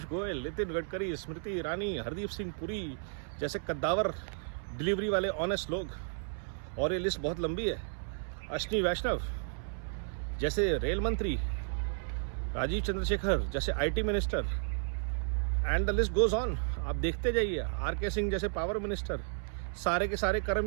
गोयल, नितिन गडकरी, स्मृति ईरानी, हरदीप सिंह पुरी जैसे कद्दावर डिलीवरी वाले ऑनेस्ट लोग। और ये लिस्ट बहुत लंबी है। अश्विनी वैष्णव जैसे रेल मंत्री, राजीव चंद्रशेखर जैसे IT minister, and the list goes on. आप देखते जाइए। आरके सिंह जैसे पावर मिनिस्टर, सारे के सारे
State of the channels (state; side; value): silent; left; 56 dB below the other